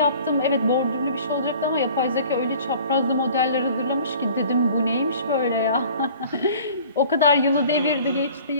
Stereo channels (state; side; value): inverted; both; correlation -0.49